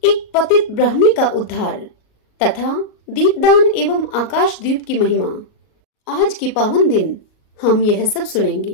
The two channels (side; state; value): right; late; 38 ms